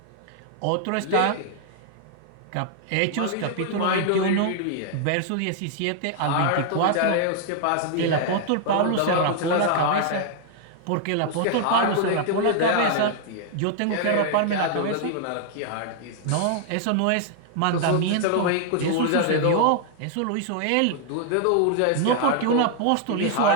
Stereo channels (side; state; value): both; different; correlation 0.00